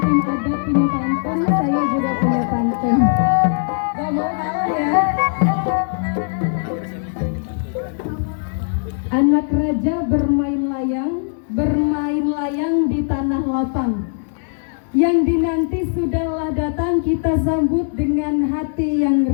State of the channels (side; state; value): right; silent; 64 dB below the other